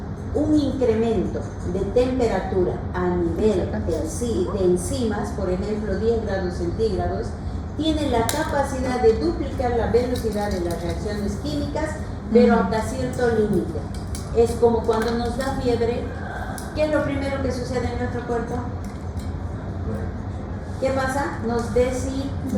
Un incremento de temperatura a nivel de enzimas, por ejemplo 10 grados centígrados, tiene la capacidad de duplicar la velocidad de las reacciones químicas, pero hasta cierto límite. Es como cuando nos da fiebre, ¿qué es lo primero que sucede en nuestro cuerpo? ¿Qué pasa? Nos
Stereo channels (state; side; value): identical; both; correlation 1.00